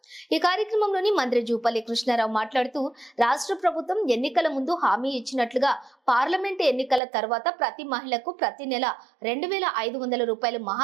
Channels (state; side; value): drops out; left; at 7.0 s